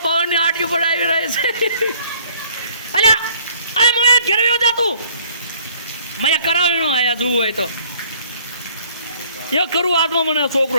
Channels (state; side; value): inverted; both; correlation -0.59